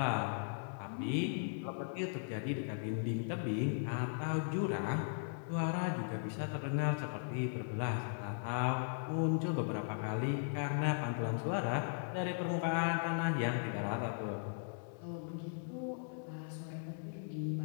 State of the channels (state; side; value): silent; right; 52 dB below the other